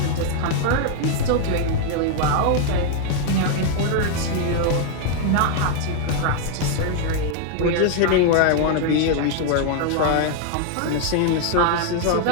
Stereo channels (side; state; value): both; different; correlation 0.00